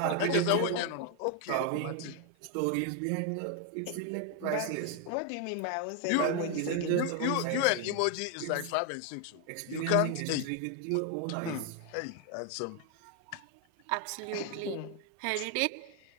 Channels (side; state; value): both; different; correlation 0.01